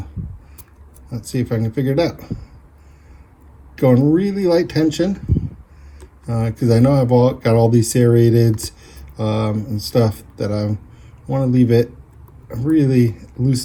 let's see if I can figure it out. Going really light tension because I know I've got all these serrateds and stuff that I want to leave it really loose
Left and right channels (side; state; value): both; identical; correlation 1.00